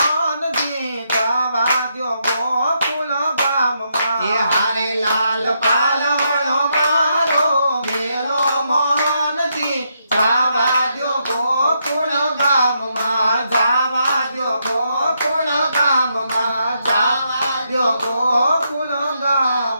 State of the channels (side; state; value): both; inverted; correlation -0.79